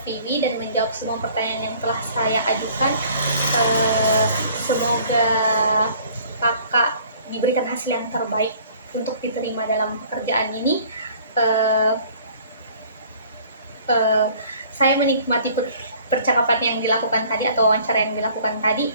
dan menjawab semua pertanyaan yang telah saya ajukan. Semoga kakak diberikan hasil yang terbaik untuk diterima dalam pekerjaan ini. Eh, eh, saya menikmati percakapan yang dilakukan tadi atau wawancara yang dilakukan tadi.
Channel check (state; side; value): inverted; both; correlation -0.54